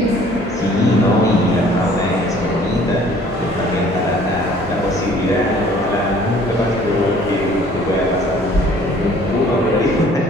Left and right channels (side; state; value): both; normal; correlation 0.55